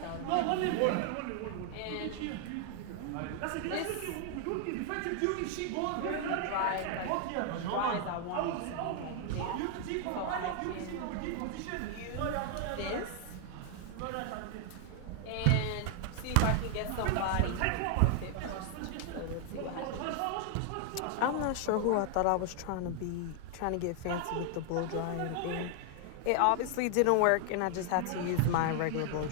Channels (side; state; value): both; different; correlation 0.00